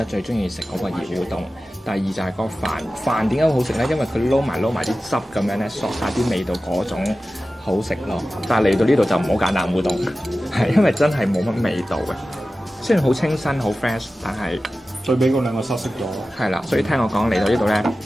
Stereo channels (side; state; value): both; normal; correlation 0.95